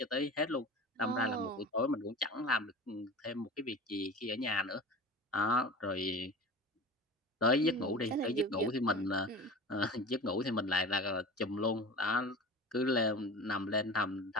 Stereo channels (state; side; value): normal; both; correlation 0.35